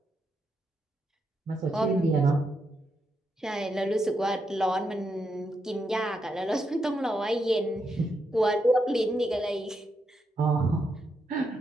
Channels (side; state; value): both; normal; correlation 0.82